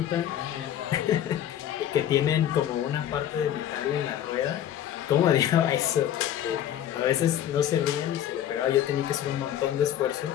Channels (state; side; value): quieter; right; 11.0 dB